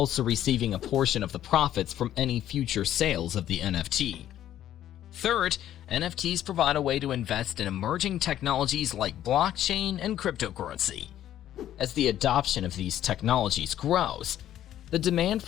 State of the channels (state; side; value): quieter; right; 11.9 dB